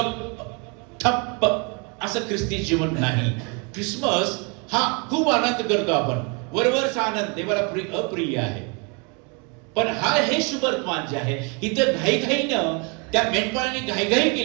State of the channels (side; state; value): left; quieter; 33.2 dB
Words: ठप्प असं ख्रिस्ती जीवन नाही. क्रिसमस हा खूप आनंद करतो आपण, वरवरचा आनंद देवाला अप्रिय आहे. पण हे शुभवर्तमान जे आहे, इथं घाईघाईनं त्या मेंढपाळांनी घाईघाई